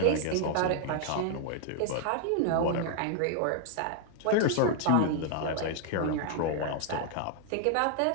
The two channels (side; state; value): both; different; correlation 0.00